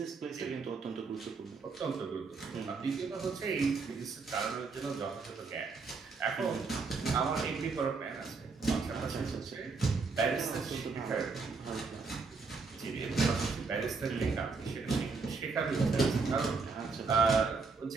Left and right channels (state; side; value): quieter; left; 4.5 dB